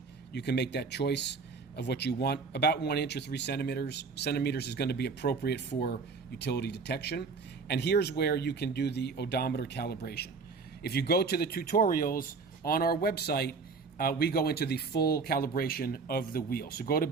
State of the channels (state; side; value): quieter; left; 4.6 dB